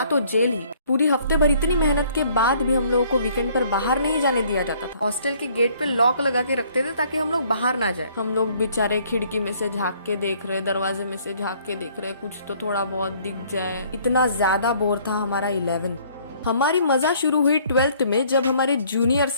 तो जेल ही। पूरी हफ्ते भर इतनी मेहनत के बाद भी हम लोगों को वीकेंड पर बाहर नहीं जाने दिया जाता था। हॉस्टल के गेट पे लॉक लगा के रखते थे ताकि हम लोग बाहर ना जाए। हम लोग बेचारे खिड़की में से झाँक के देख रहे, दरवाजे में से झाँक के देख रहे, कुछ तो थोड़ा बहुत दिख जाए। इतना ज्यादा बोर था हमारा 11th। हमारी मजा शुरू हुई 12th में जब हमारे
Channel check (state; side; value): inverted; both; correlation -0.60